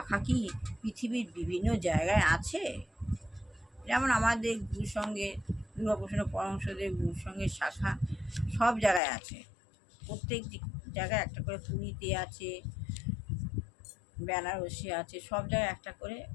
কি পৃথিবীর বিভিন্ন জায়গায় আছে? যেমন আমাদের গুরুসঙ্গে, দুর্গাপ্রসন্ন পরমহংসদেব গুরুসঙ্গের শাখা সব জায়গায় আছে। প্রত্যেক জায়গায় একটা করে, পুরীতে আছে, বেনারসে আছে, সব জায়গায় একটা করে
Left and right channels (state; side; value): drops out; right; at 9.0 s